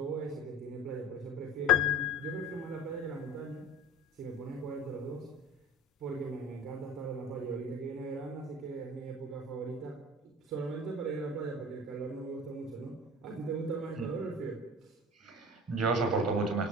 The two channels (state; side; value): normal; both; correlation 0.37